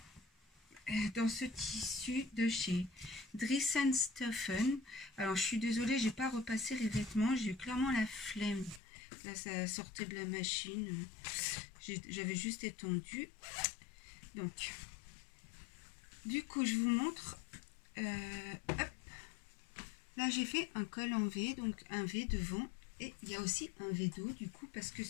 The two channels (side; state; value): right; drops out; at 8.8 s